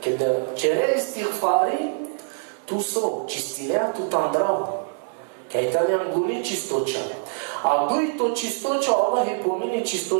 kad čere istighfari, tu so čistinea, tu tam drago. Kaj tam je anguni čistoća. A duj to čistoća, Allah je pomini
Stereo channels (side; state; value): left; silent; digital silence